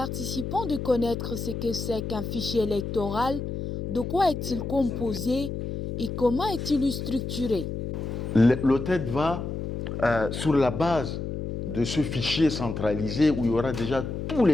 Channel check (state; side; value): noise; left; hum, 5 dB below the sound